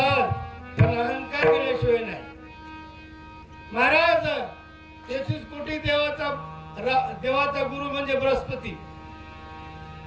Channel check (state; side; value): identical; both; correlation 1.00